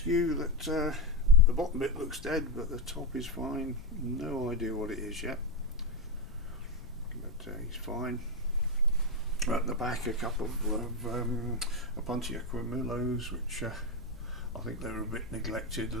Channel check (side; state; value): left; noise; rumble, 19 dB below the sound